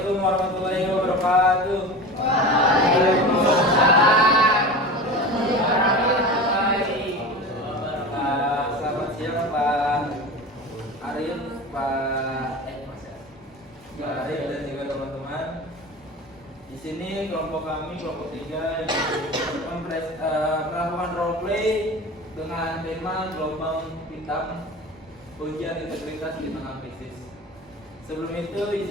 warahmatullahi wabarakatuh. Waalaikumsalam. Selamat siang Pak Arif, Pak Arif dan juga teman-teman. Di sini kelompok kami, kelompok 3 melakukan role play dengan tema gelombang hitam ujian integritas di tengah krisis. Sebelum itu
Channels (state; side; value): normal; both; correlation 0.32